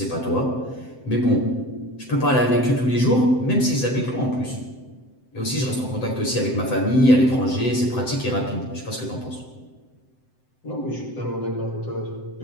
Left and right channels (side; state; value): right; late; 7.8 ms